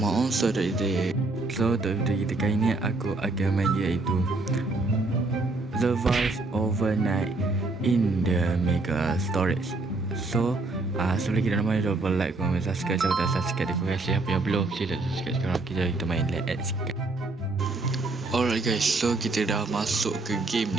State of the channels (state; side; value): quieter; left; 3.3 dB